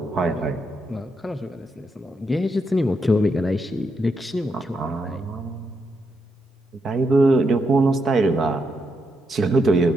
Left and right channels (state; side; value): normal; both; correlation 0.81